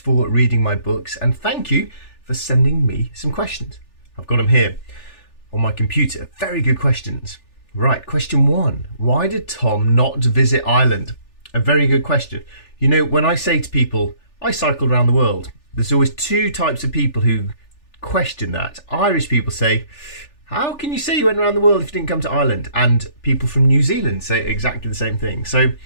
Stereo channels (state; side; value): late; right; 3.4 ms